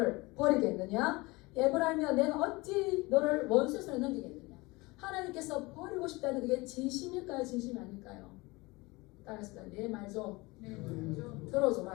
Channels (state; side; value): quieter; right; 23.4 dB